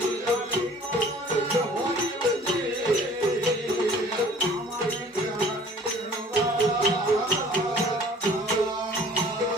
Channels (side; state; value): both; normal; correlation 0.51